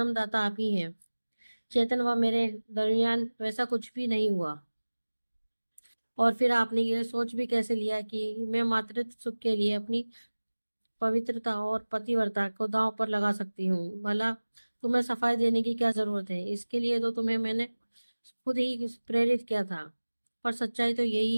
आप ही हैं। चेतन व मेरे दरमियान वैसा कुछ भी नहीं हुआ। और फिर आपने ये सोच भी कैसे लिया कि मैं मातृत्व सुख के लिए अपनी पवित्रता और पतिव्रता को दांव पर लगा सकती हूँ? भला तुम्हें सफाई देने की क्या जरूरत है? इसके लिए तो तुम्हें मैंने खुद ही प्रेरित किया था। पर सच्चाई तो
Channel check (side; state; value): both; inverted; correlation -1.00